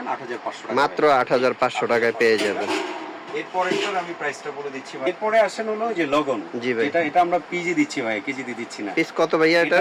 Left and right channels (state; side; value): identical; both; correlation 1.00